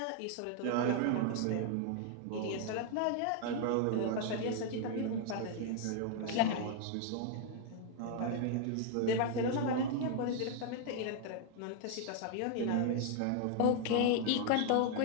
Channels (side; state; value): both; different; correlation 0.00